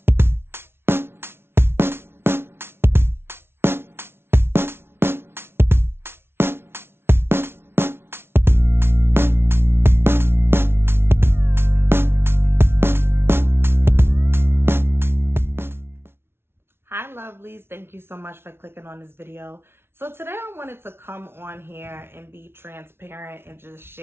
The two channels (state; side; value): late; left; 0.12 ms